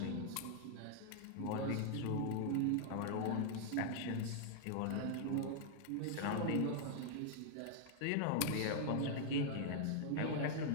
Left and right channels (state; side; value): different; both; correlation -0.01